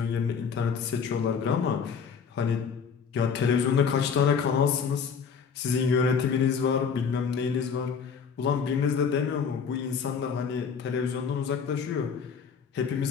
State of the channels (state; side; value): quieter; right; 6.3 dB